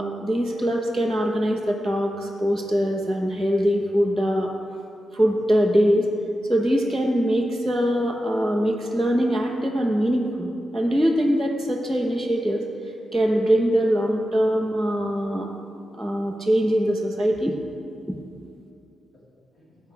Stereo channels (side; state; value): both; normal; correlation 0.92